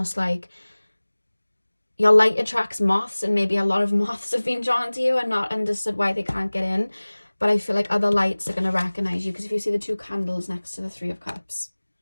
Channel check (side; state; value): both; inverted; correlation -1.00